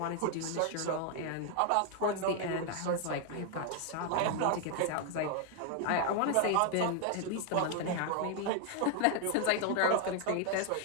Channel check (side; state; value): both; different; correlation 0.00